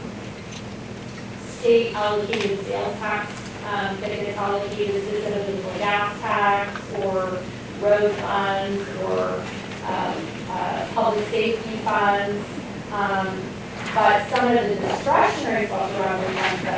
state allocated sales tax that gets allocated specifically for gas tax or road funds or public safety funds. But some of the discretionary special revenue funds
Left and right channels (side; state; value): both; identical; correlation 1.00